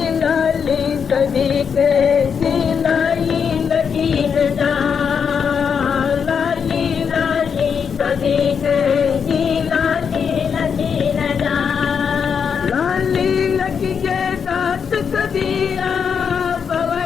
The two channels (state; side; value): quieter; right; 6.7 dB